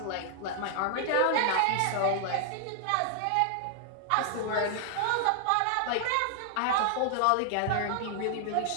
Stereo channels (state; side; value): different; both; correlation 0.00